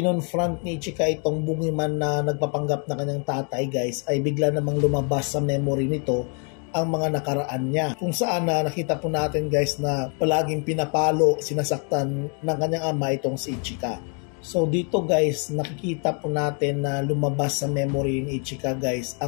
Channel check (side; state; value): right; quieter; 38.7 dB